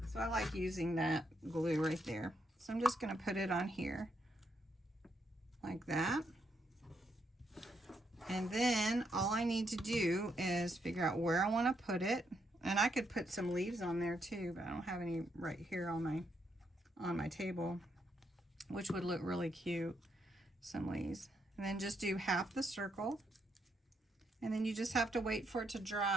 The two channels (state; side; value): normal; both; correlation 0.78